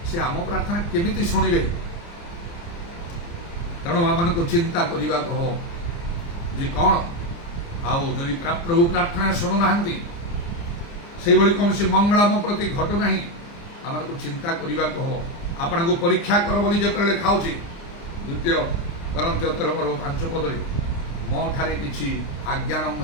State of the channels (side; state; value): right; late; 29 ms